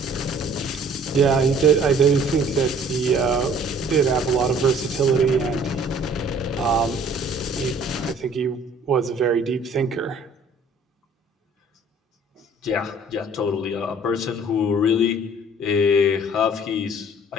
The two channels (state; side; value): normal; both; correlation 0.54